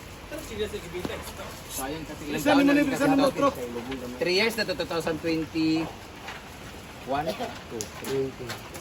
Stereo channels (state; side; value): identical; both; correlation 1.00